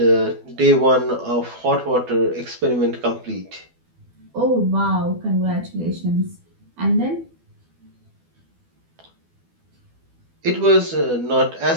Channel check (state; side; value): late; left; 12 ms